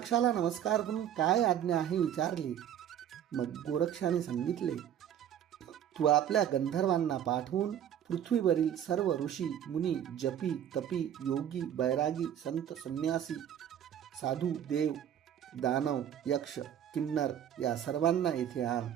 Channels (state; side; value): quieter; left; 10.0 dB